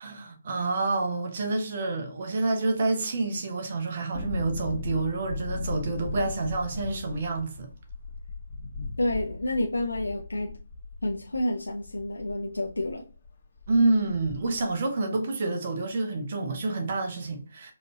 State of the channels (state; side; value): inverted; both; correlation -0.84